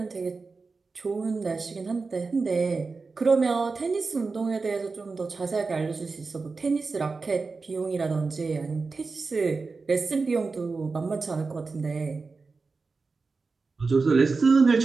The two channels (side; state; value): left; quieter; 4.2 dB